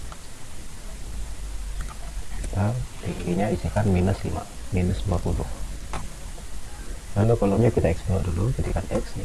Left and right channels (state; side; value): identical; both; correlation 1.00